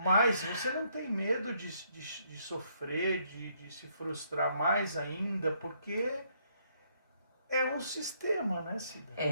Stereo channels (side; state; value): both; inverted; correlation -0.71